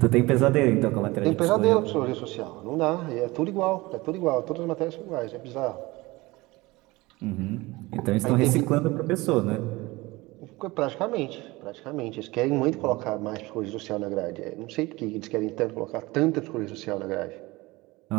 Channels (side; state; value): left; quieter; 21.5 dB